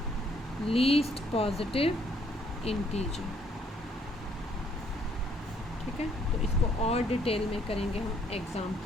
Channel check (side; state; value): both; normal; correlation 0.66